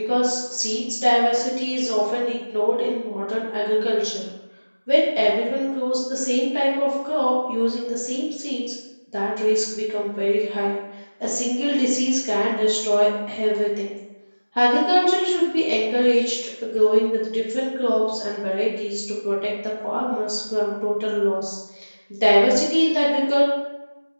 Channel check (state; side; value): inverted; both; correlation -1.00